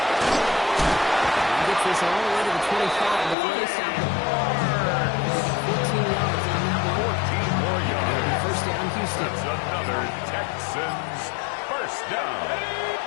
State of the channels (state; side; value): drops out; right; at 3.4 s